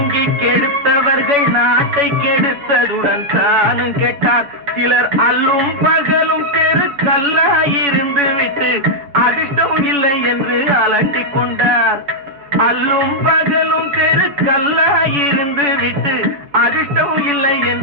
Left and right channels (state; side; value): late; left; 7.0 ms